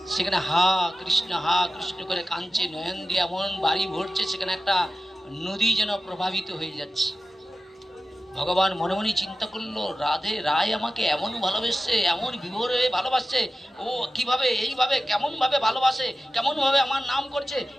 সেখানে হা কৃষ্ণ করে কাঁদছে, নয়ন দিয়ে এমন বাড়ি ভরছে, সেখানে একটা নদী যেন প্রভাবিত হয়ে যাচ্ছে। ভগবান মনে মনে চিন্তা করলো, রাধে রায় আমাকে এমন ভালোবাসছে, এমন বিভোরে ভালোবাসছে, ও কিভাবে এইভাবে কেমন ভাবে ভালোবাসে, কেমন ভাবে আমার নাম করছে,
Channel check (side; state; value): both; normal; correlation 0.95